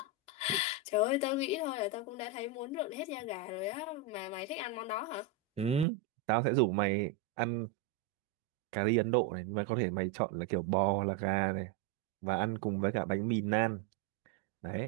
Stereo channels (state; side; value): drops out; left; at 5.9 s